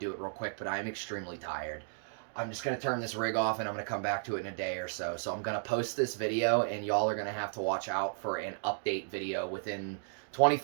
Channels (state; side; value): silent; left; digital silence